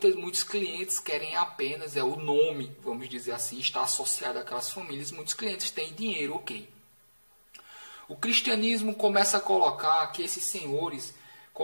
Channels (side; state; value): both; inverted; correlation -1.00